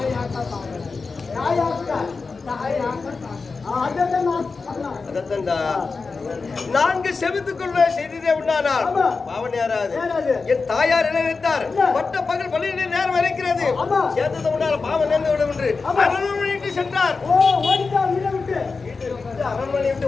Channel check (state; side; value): quieter; right; 4.4 dB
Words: அதத்தண்டா 4 செபத்துக்குள்ள செய்ததே உண்டானால் பாவன் யாராது? என் தாயார் என்ன நினைத்தார்? பட்ட பகல் பள்ளியிலே நேரம் இருக்கிறது சேர்ந்தது உண்டான பாவன் நேர்ந்து விடும் என்று அரண்மனைக்கு சென்றார். அரண்மனை விட்டு